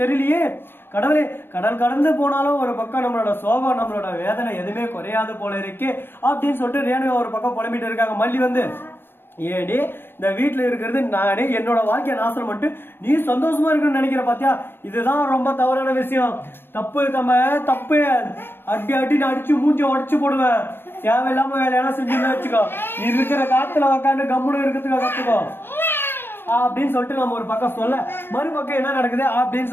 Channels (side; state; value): right; late; 0.10 ms